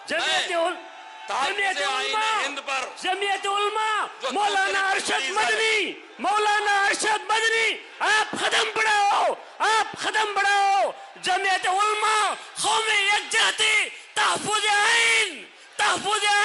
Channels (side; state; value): both; identical; correlation 1.00